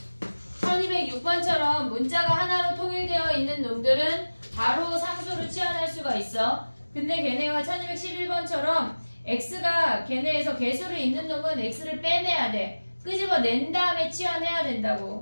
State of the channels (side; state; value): both; inverted; correlation -1.00